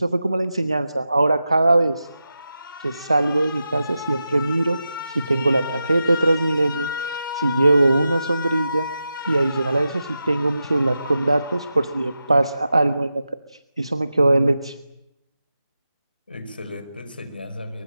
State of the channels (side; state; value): both; inverted; correlation -0.90